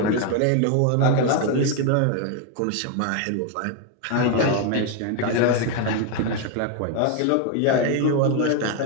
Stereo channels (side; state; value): both; different; correlation 0.01